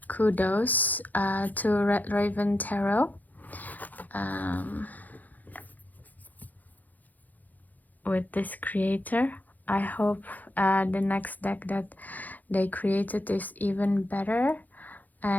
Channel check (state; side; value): late; right; 0.082 ms